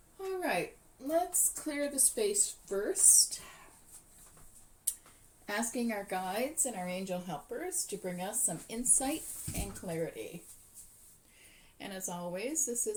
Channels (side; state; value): both; identical; correlation 1.00